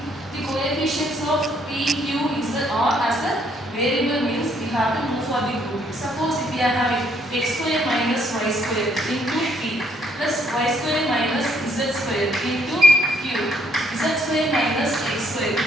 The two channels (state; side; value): normal; both; correlation 0.68